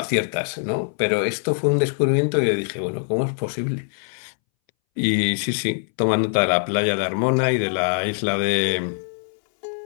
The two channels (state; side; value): silent; right; 63 dB below the other